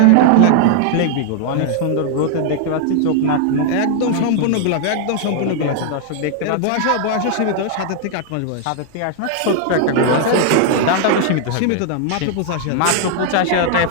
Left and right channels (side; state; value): both; different; correlation 0.00